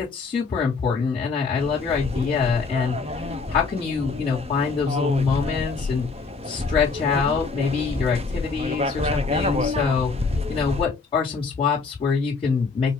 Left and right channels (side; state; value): right; quieter; 4.5 dB